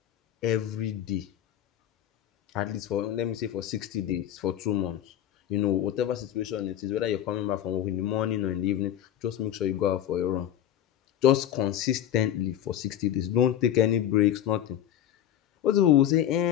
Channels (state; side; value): quieter; right; 11.1 dB